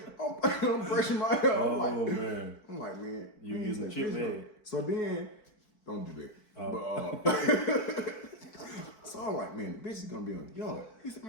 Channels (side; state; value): right; late; 4.6 ms